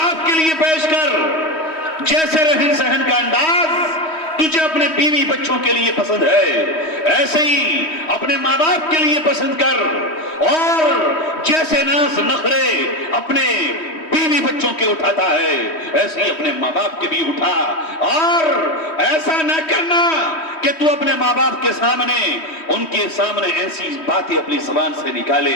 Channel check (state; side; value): late; right; 3.1 ms